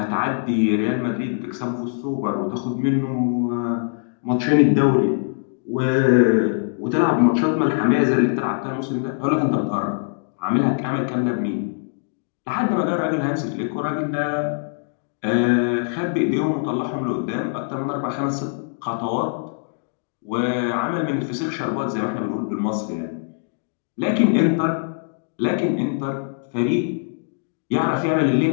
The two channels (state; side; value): silent; right; digital silence